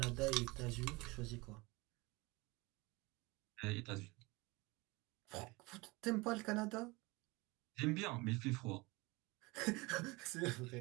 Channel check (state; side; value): quieter; left; 24.3 dB